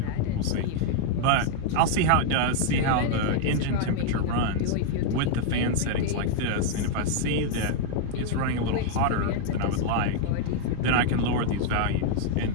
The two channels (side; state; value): both; different; correlation -0.01